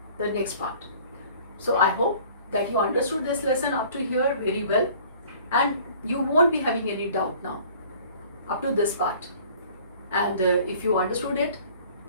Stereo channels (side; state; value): both; inverted; correlation -0.51